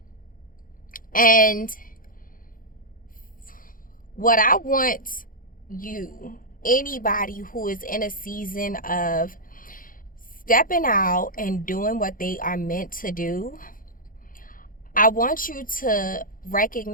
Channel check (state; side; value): late; right; 0.40 ms